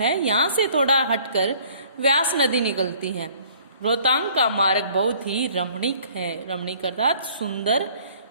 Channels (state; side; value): inverted; both; correlation -0.55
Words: यहाँ से थोड़ा हटकर व्यास नदी निकलती है। रोहतांग का मार्ग बहुत ही रमणीक है। रमणीक अर्थात सुंदर